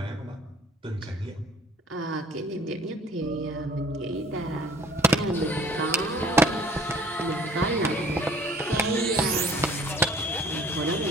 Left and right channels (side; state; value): both; normal; correlation 0.51